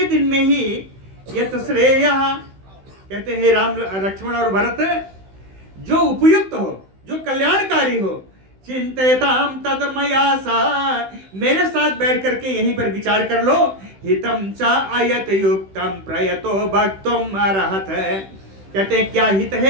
दिन में ही यत श्रेया, कहते हैं राम लक्ष्मण और भरत, जो उपयुक्त हो, जो कल्याणकारी हो, चिंतयताम तत् मया सा, मेरे साथ बैठ करके यहीं पर विचार कर लो। हितम च अयत युक्तम प्रयतो भक्तुम अर्हत, कहते हैं क्या हित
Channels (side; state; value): left; late; 16 ms